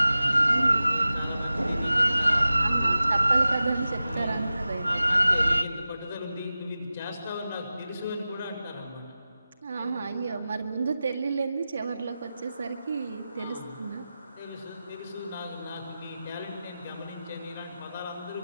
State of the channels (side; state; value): both; inverted; correlation -0.94